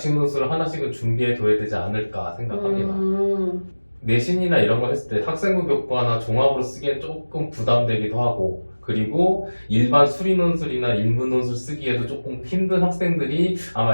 논술을 하나씩은 준비해 둬야 되지 않을까 생각합니다. 내신이나 이런 걸 했을 때 학생부 교과나 종합으로 쓰기엔 조금 부담되기도 하고, 그리고 일반 수리 논술이나 인문 논술 쓰기에도 조금 힘든 학생들이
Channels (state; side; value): inverted; both; correlation -1.00